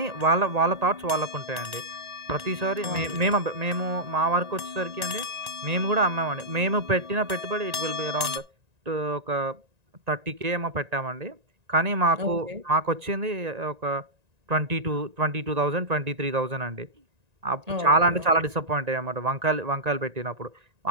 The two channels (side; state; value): left; late; 1.9 ms